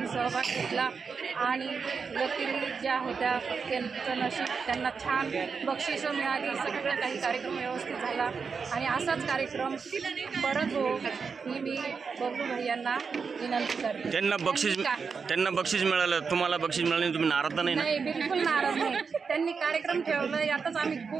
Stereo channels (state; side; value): quieter; left; 5.4 dB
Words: सहभाग घेतला आणि व्यक्ती ज्या होत्या त्यांचं नशीब, त्यांना छान बक्षिसं मिळाली. सगळं काही कार्यक्रम व्यवस्थित झाला आणि असाच कार्यक्रम परत हो ही मी बबलू भैयांना विनंती करते. त्यांना बक्षीस मिळालं, तुम्हाला बक्षीस मिळालं नाही, तुम्ही नाराज नाही? नाही, बिलकुल नाराज नाही. त्यांनी कार्यक्रम ठेवलं यातच आम्ही